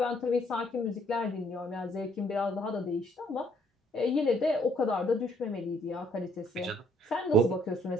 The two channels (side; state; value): both; normal; correlation 0.65